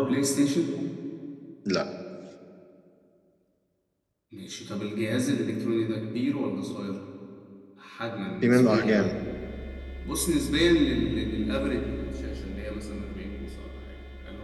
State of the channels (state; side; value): identical; both; correlation 1.00